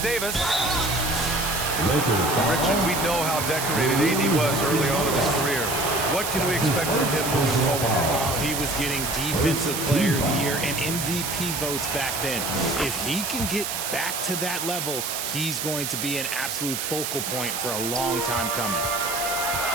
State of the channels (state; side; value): noise; right; hiss, 3 dB below the sound